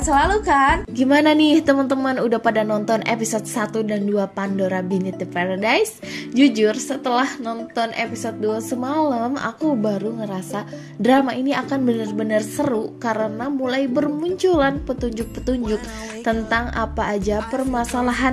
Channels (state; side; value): identical; both; correlation 1.00